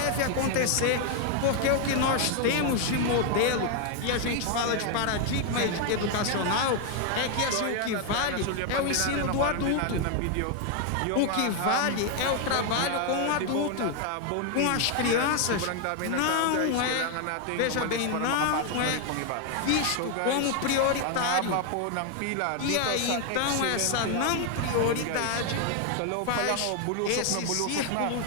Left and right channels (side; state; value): both; different; correlation 0.00